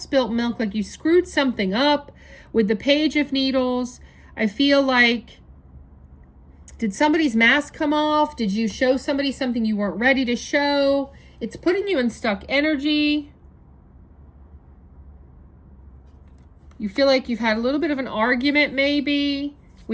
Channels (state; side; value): identical; both; correlation 1.00